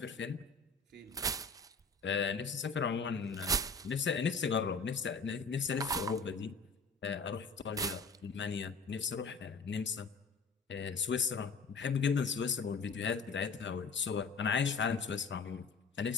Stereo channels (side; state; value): right; quieter; 4.3 dB